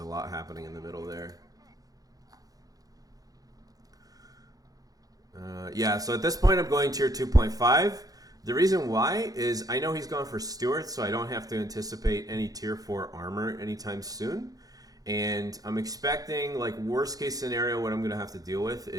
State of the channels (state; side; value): late; left; 0.18 ms